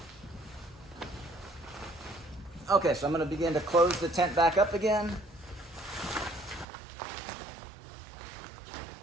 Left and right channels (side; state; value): left; drops out; at 6.7 s